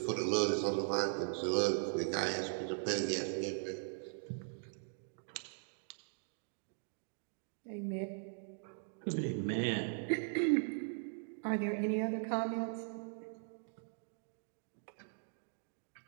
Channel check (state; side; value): silent; left; digital silence